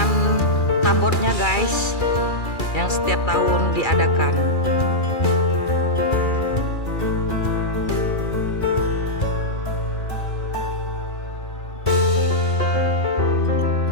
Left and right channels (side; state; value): right; late; 2.3 ms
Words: tabotnya guys, yang setiap tahun diadakan.